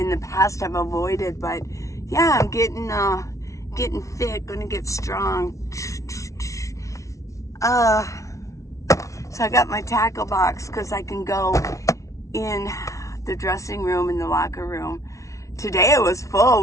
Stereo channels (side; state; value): right; late; 0.15 ms